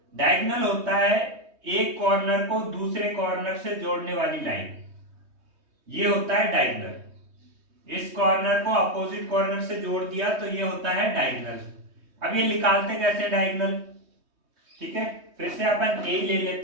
डायगोनल होता है एक कॉर्नर को दूसरे कॉर्नर से जोड़ने वाली लाइन, ये होता है डायगोनल। इस कॉर्नर को अपोजिट कॉर्नर से जोड़ दिया तो ये होता है डायगोनल। अब ये निकालते कैसे डायगोनल? ठीक है, फिर से अपन ए ले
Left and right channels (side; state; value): left; late; 3.2 ms